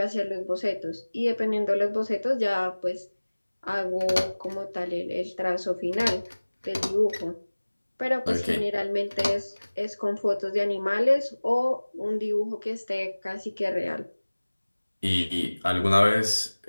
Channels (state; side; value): inverted; both; correlation -1.00